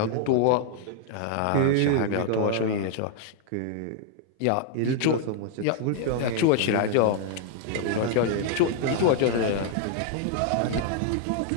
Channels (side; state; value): both; different; correlation 0.00